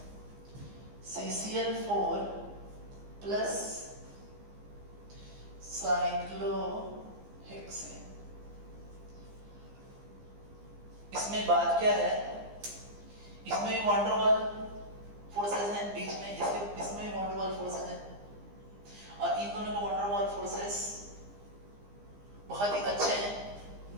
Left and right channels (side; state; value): left; late; 15 ms